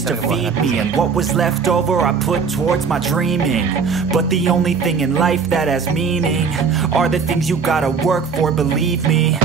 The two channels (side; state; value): left; quieter; 5.7 dB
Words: to feed me. And what was left over I put towards my dreaming. But the only thing in life that has meaning are the things you gotta work for, believe me.